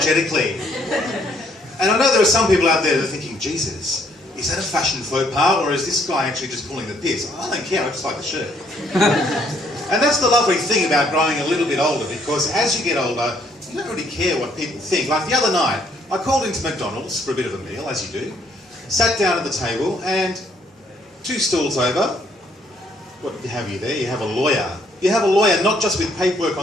And I know there are some people out there that are thinking, Jesus, is that a fashion faux pas, or is this guy actually just pulling the piss? I don't care, I just like the shirt. And that's the lovely thing about growing a little bit older, because as you get older, you don't really care what people think. Like the other night, I called into McDonald's for a bit of a meal, as you do, sat down at the table, and 2 stalls over, what have you there? You have a lawyer. You have a lawyer not just with paperwork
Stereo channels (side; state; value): both; normal; correlation 0.68